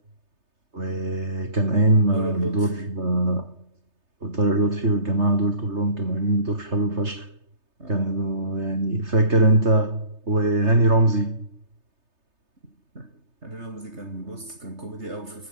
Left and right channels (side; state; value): left; late; 3.3 ms